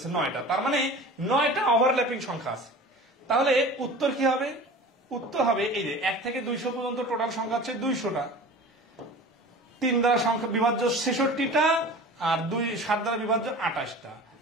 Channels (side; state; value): both; normal; correlation 0.39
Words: 9টা। তার মানে 9টা ওভারল্যাপিং সংখ্যা আছে। তাহলে উত্তর কি হবে? উত্তর হবে এই যে 1 থেকে 200 পর্যন্ত টোটাল সংখ্যা হচ্ছে 200টা, 3 দ্বারা সংখ্যা বিভাজ্য 66টা, আর 7 দ্বারা বিভাজ্য 28টা।